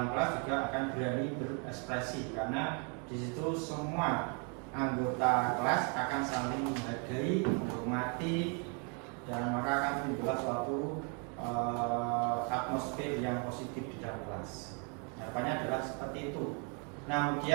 kelas juga akan berani berekspresi, karena di situ semua anggota kelas akan saling menghargai, menghormati, dan maka akan timbul suatu atmosfer yang positif di dalam kelas. Harapannya adalah seperti itu. Nah,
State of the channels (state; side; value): quieter; left; 37.0 dB